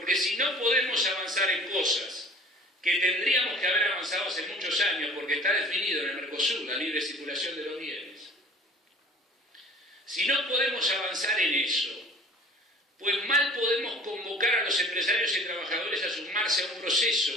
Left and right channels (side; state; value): both; normal; correlation 0.46